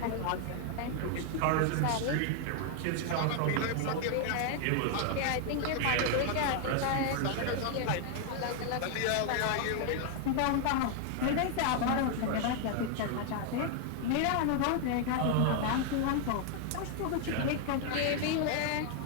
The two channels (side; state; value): both; different; correlation 0.00